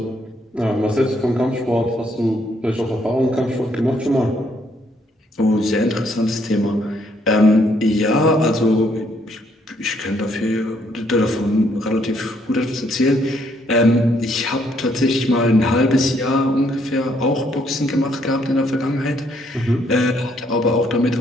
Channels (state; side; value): normal; both; correlation 0.70